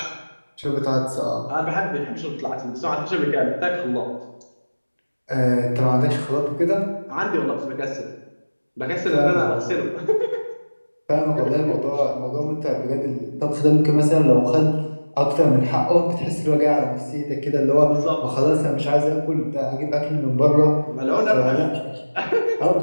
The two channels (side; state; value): both; inverted; correlation -1.00